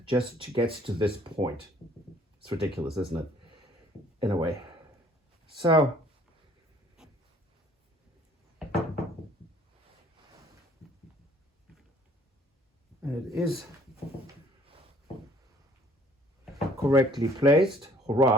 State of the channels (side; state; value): both; normal; correlation 0.57